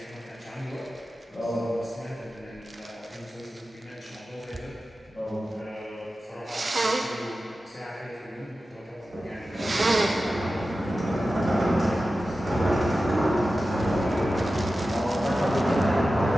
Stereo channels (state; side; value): normal; both; correlation 0.94